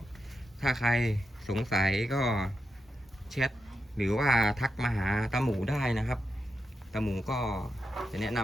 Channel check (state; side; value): normal; both; correlation 0.86